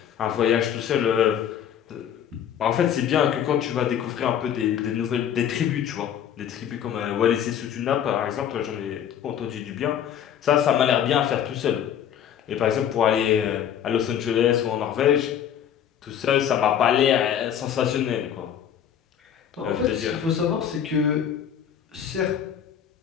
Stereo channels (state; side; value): quieter; right; 9.3 dB